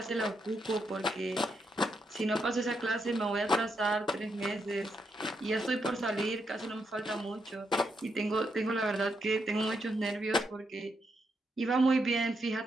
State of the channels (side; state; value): both; normal; correlation 0.80